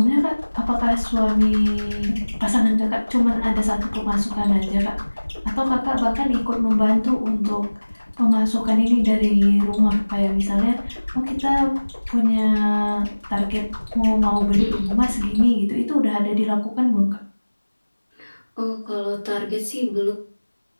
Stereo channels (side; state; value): both; inverted; correlation -1.00